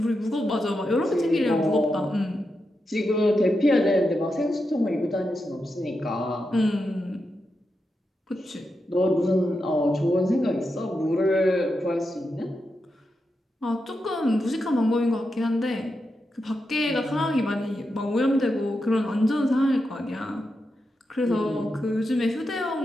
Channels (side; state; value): both; normal; correlation 0.87